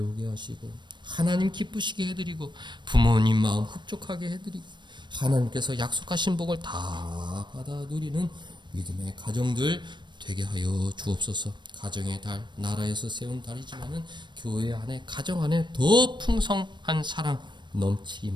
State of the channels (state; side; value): late; left; 0.22 ms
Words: 하시고 하나님 기쁘시게 해드리고 부모님 마음 흡족하게 해드리고 하나님께서 약속하신 복을 다 받아 누리는 믿음의 가정들 되게 하여 주옵소서. 가정의 달, 나라에서 세운 달이지만은 교회 안에 가정 안에 더 풍성한 사랑